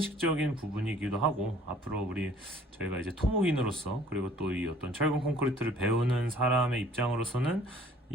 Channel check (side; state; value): both; normal; correlation 0.55